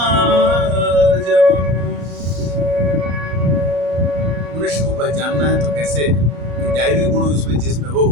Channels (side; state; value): left; late; 34 ms